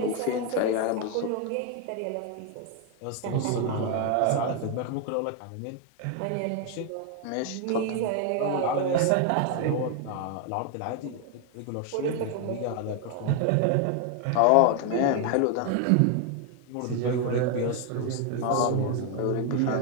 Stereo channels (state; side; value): different; both; correlation 0.01